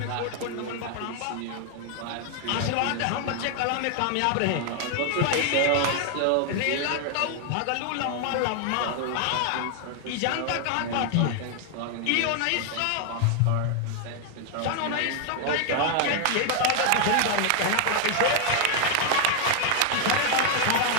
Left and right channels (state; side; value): different; both; correlation 0.00